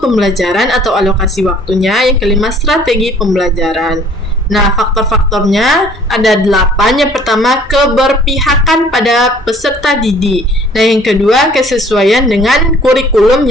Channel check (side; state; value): both; normal; correlation 0.55